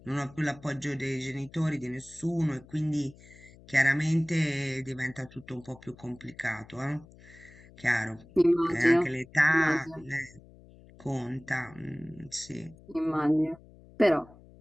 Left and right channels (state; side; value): noise; left; hum, 23 dB below the sound